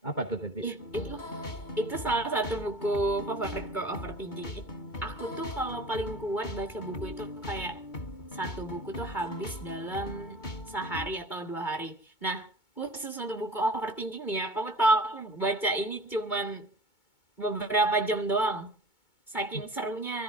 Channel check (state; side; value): late; right; 2.2 ms